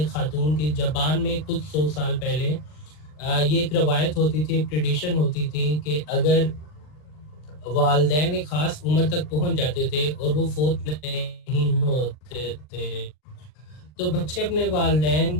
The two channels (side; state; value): right; late; 40 ms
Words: खातून की। जापान में कुछ 100 साल पहले ये एक रवायत होती थी, एक ट्रेडिशन होती थी कि अगर वालिदैन एक खास उम्र तक पहुंच जाते थे और वो फोत नहीं होते थे, तो बच्चे अपने